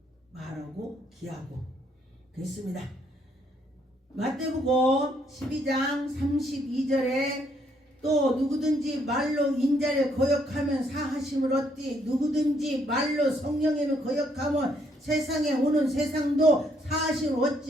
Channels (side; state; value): both; normal; correlation 0.71